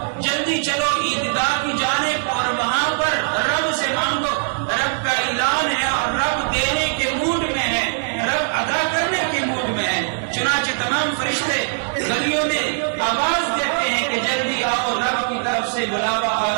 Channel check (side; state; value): left; silent; 61 dB below the other